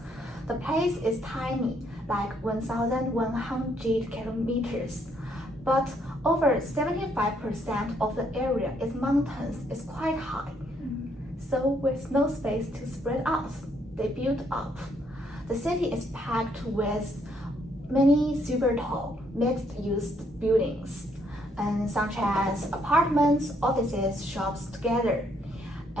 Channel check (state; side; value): normal; both; correlation 0.71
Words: The place is tiny, like 1,100 kilometers, but over 75% of the area is mountains, is quite high. So with no space to spread out, they built up. The city is packed with many super tall, mixed-use buildings, and such as apartments, offices, shops together.